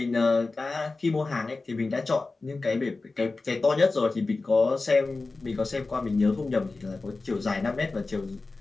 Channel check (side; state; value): right; quieter; 3.6 dB